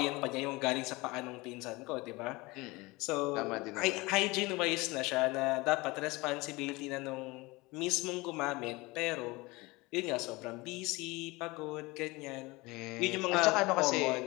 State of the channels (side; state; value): right; quieter; 23.2 dB